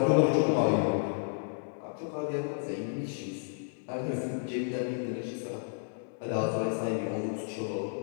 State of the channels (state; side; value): silent; right; digital silence